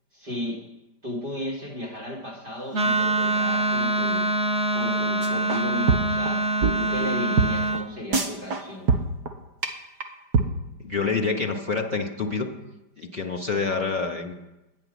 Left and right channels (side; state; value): left; late; 5.0 ms